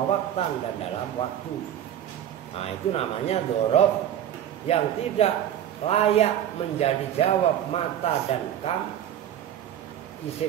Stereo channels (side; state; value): left; quieter; 10.7 dB